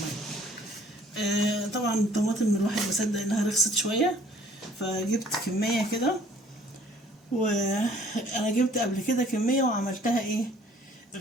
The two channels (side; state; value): both; normal; correlation 0.57